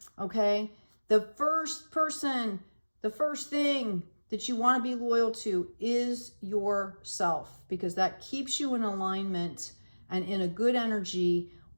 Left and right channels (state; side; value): inverted; both; correlation -1.00